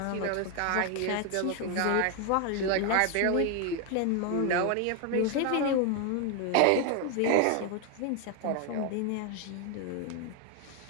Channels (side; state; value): both; different; correlation 0.01